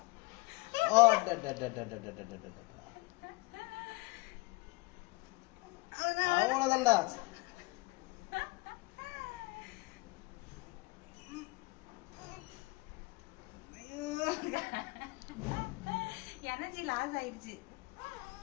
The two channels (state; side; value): quieter; right; 24.6 dB